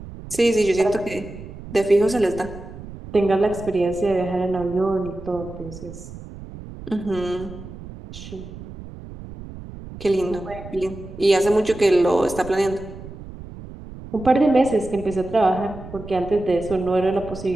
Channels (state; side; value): noise; right; rumble, 14 dB below the sound